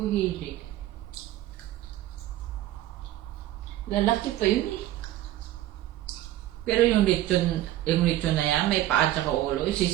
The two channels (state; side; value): quieter; left; 14.4 dB